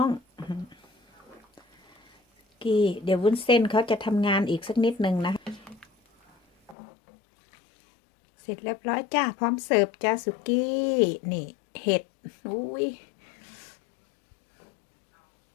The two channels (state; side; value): drops out; right; at 6.8 s